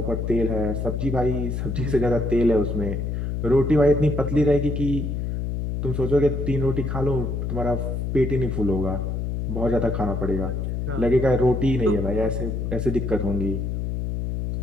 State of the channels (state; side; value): noise; left; hum, 2 dB below the sound